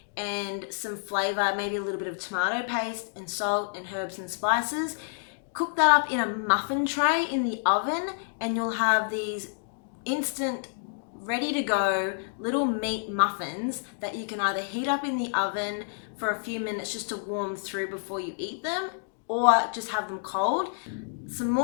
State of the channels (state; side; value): silent; right; digital silence